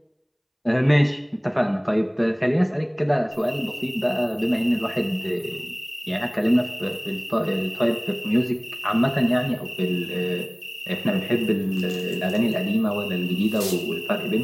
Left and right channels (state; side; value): identical; both; correlation 1.00